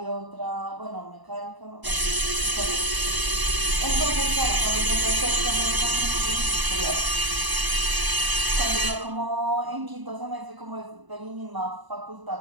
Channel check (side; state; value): left; late; 1.0 ms